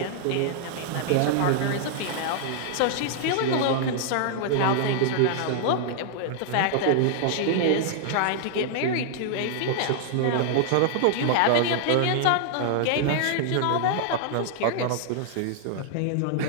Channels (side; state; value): both; different; correlation -0.01